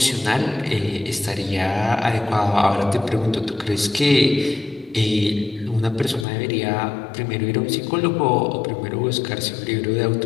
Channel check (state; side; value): drops out; right; at 6.2 s